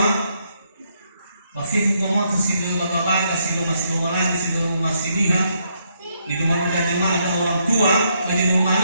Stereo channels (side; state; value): both; inverted; correlation -0.75